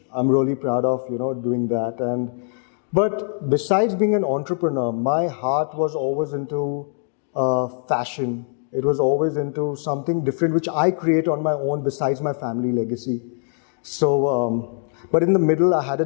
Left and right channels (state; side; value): silent; right; 60 dB below the other